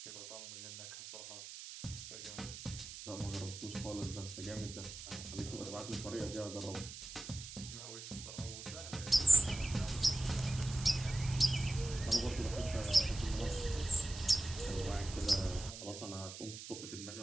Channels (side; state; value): right; noise; hiss, 11 dB below the sound